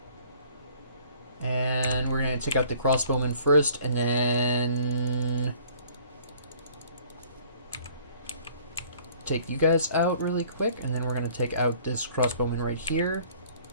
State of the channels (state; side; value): inverted; both; correlation -0.54